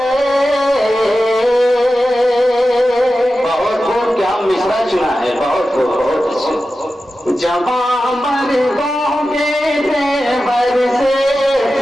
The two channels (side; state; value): both; normal; correlation 0.93